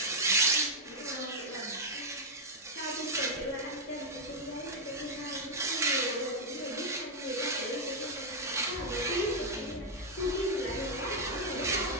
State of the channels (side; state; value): both; normal; correlation 0.00